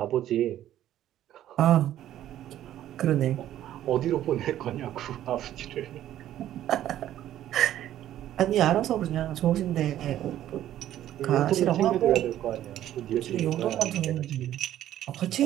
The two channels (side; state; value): left; quieter; 12.3 dB